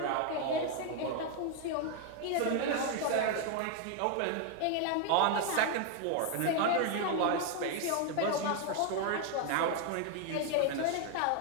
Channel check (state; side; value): different; both; correlation 0.01